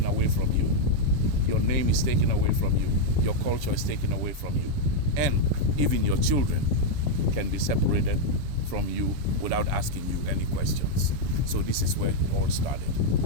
away from you. Your name is taken away from you. Your culture is taken away from you. And even your children can be separated from you without asking you any questions. So this is where it all started.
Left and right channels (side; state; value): left; late; 7.1 ms